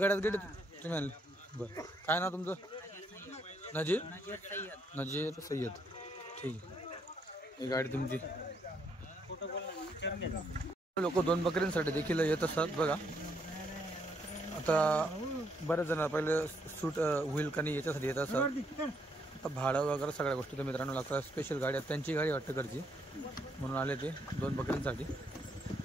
गेट तुम्ही आणले? बरं काय नाव तुमचं? नजीर सय्यद. ठीक आहे. ही गाडी तुमची. लोक 2 बकऱ्यांसाठी देखील येत असतात बघा. आता बरेच जण पहिले सूट होईल का नाही याच्यासाठी येत असतात. आता भाडं वगैरे सगळ्या गोष्टी तर मित्रांनो लागतात. स्पेशल गाडी त्यांची गाडी वाटतं घरची म्हणून आले ते 2 बकऱ्यांसाठी.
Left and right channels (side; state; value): both; normal; correlation 0.73